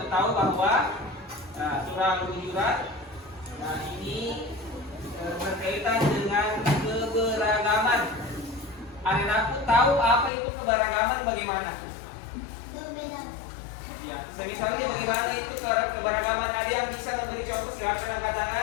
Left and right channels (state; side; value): drops out; right; at 10.3 s